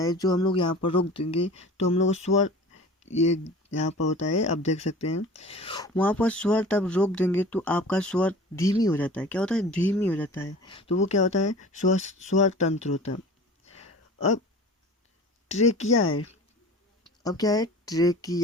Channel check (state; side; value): normal; both; correlation 0.40